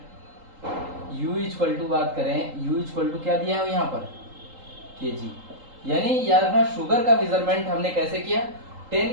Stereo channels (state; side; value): late; left; 3.8 ms